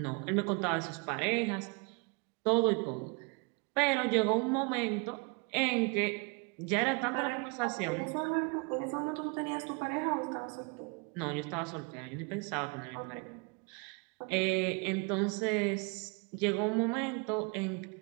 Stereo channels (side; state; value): left; quieter; 32.5 dB